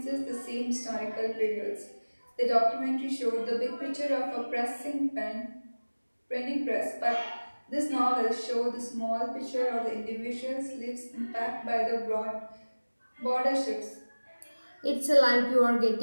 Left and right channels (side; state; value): both; inverted; correlation -1.00